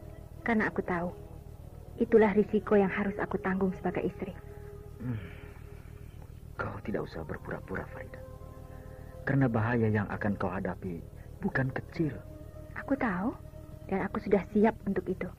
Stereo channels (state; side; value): identical; both; correlation 1.00